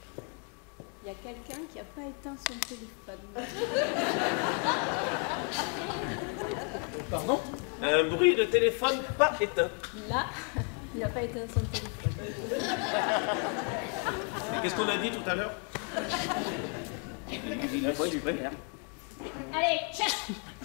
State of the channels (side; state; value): right; quieter; 39.2 dB